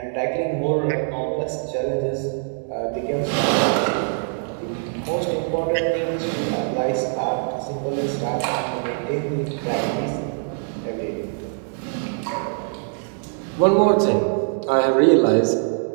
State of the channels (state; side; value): silent; left; 63 dB below the other